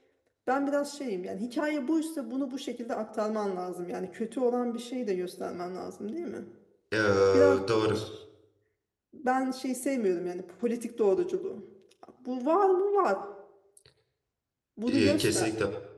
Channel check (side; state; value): both; identical; correlation 1.00